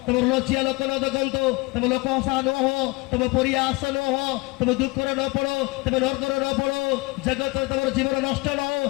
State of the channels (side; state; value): right; quieter; 24.9 dB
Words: ତମର ଲଜ୍ଜା ଲୋକ ନ ଦେଖନ୍ତୁ, ତମେ ଲୋକ ହସା ନ ହୁଅ, ତମେ ପରିହାସ ନ ହୁଅ, ତମେ ଦୁଃଖରେ ନ ପଡ, ତମେ ନର୍କରେ ନ ପଡ, ଜଗତରେ ତମର ଜୀବନ ନଷ୍ଟ ନ ହଉ।